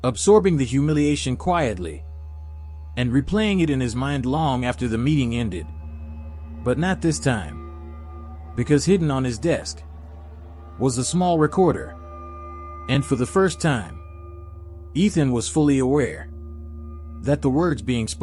absorbing the humiliation quietly, and replaying it in his mind long after the meeting ended. But not this time, because hidden on his desk was a small recorder. And for the first time, Ethan was fully aware that the words being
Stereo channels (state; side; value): identical; both; correlation 1.00